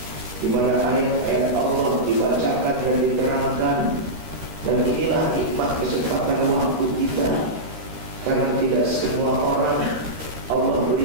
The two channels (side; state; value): left; late; 13 ms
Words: di mana ayat-ayat Allah dibacakan dan diterangkan. Dan inilah nikmat kesempatan waktu kita, karena tidak semua orang Allah